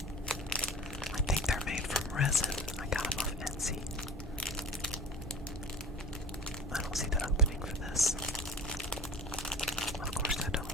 I think they're made from resin. I got them off Etsy. I don't see the opening for this. Of course I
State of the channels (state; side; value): normal; both; correlation 0.39